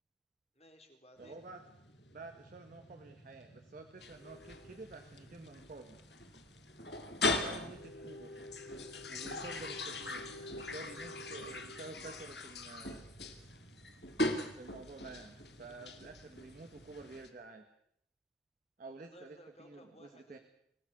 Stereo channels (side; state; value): both; normal; correlation 0.36